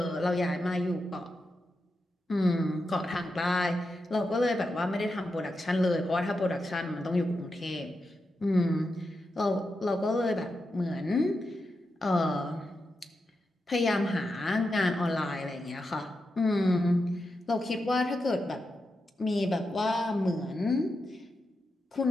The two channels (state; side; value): normal; both; correlation 0.88